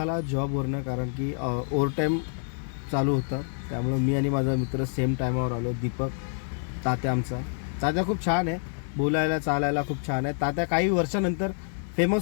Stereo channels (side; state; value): right; silent; 58 dB below the other